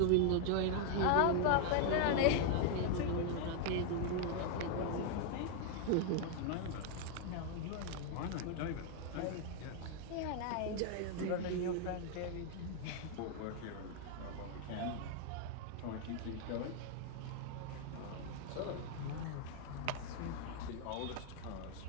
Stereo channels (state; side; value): different; both; correlation 0.00